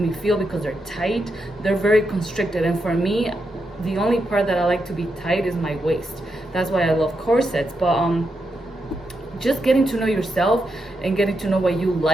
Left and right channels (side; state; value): both; normal; correlation 0.84